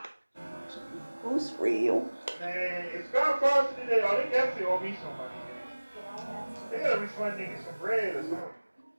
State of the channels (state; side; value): inverted; both; correlation -1.00